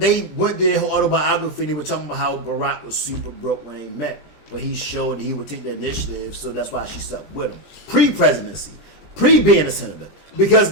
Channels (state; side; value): late; right; 20 ms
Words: went their whole autobiography and they were talking about how Barack was super broke when they met. But he showed he would take the initiative, so that's why she stuck with him. Pre-presidency. Pre-being a senator. Because